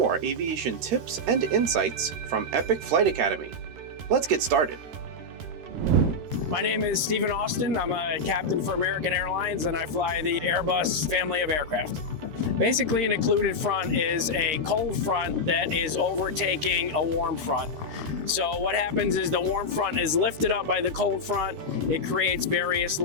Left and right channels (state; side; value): late; left; 13 ms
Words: aviation tips and insights from Epic Flight Academy. Let's get started. My name is Stephen Austin. I'm a captain for American Airlines and I fly the Airbus family of aircraft. Basically, an occluded front is a cold front that is overtaking a warm front. So what happens is the warm front is lifted up by the cold front. It creates various